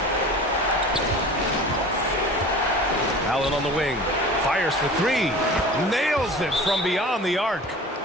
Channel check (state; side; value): normal; both; correlation 0.39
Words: Allen on the wing. Fires for 3. Nails it from beyond the arc.